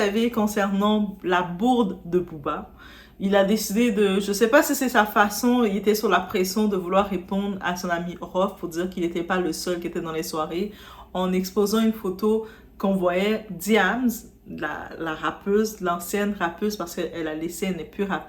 concernant la bourde de Booba, il a décidé de, je sais pas si c'est sa façon, il était sur la pression de vouloir répondre à son ami Rof pour dire qu'il n'était pas le seul qui était dans les soirées, en exposant une photo qu'on voyait Diams, la rappeuse, l'ancienne rappeuse, parce qu'elle a laissé, elle n'est plus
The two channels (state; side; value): identical; both; correlation 1.00